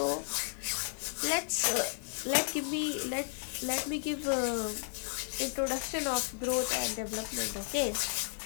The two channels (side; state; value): right; silent; digital silence